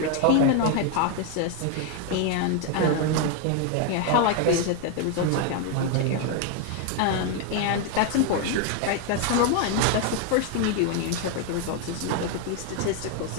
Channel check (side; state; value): both; different; correlation 0.01